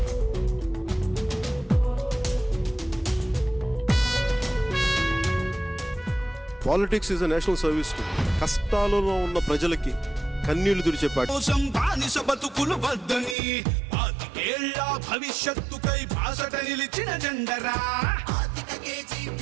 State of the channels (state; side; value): drops out; left; at 13.4 s